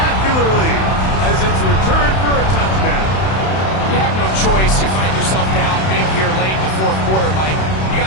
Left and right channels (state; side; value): late; right; 31 ms